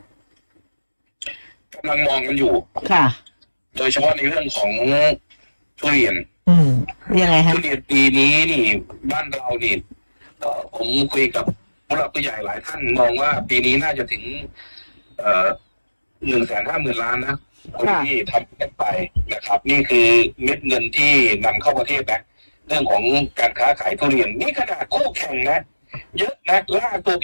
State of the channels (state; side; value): inverted; both; correlation -1.00